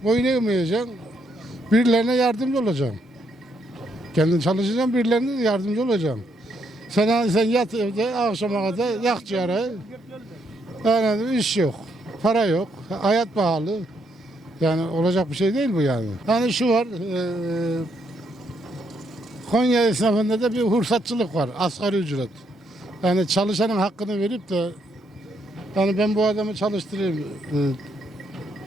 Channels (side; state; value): both; normal; correlation 0.75